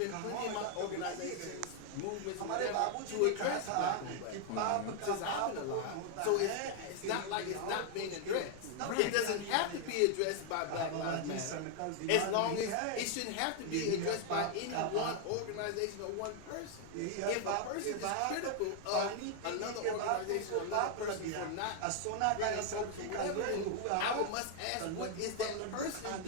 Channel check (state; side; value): different; both; correlation 0.00